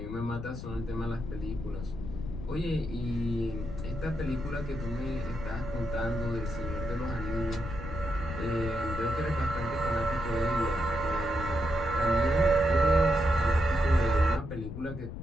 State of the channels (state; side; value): noise; left; rumble, 8 dB below the sound